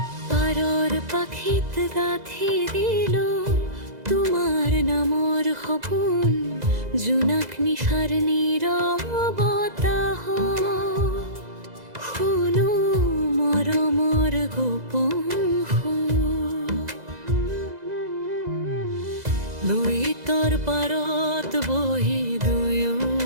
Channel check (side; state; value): left; late; 2.0 ms